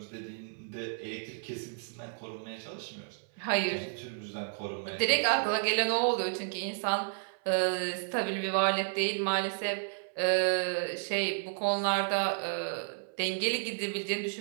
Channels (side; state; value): left; silent; 56 dB below the other